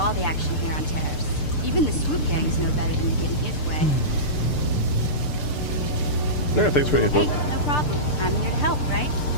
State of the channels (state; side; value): late; right; 6.7 ms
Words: the action here on Terrace. Even the swoop gangs know better than to get in his way. Yeah, thanks for the info. Hey, no problem. I'm here to help, right?